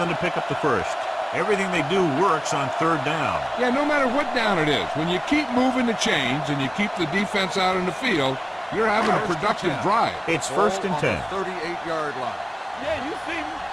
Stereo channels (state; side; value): identical; both; correlation 1.00